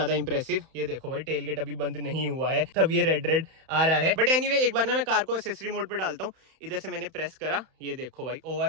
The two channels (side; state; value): left; late; 31 ms